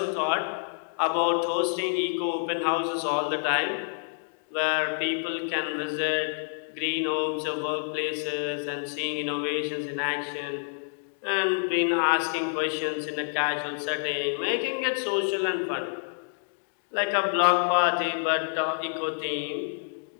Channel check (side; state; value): right; silent; digital silence